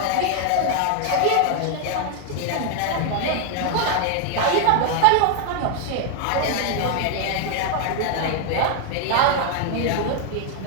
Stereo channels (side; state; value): both; different; correlation 0.01